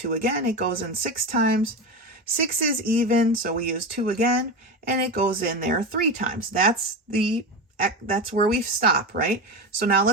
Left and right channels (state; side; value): normal; both; correlation 0.20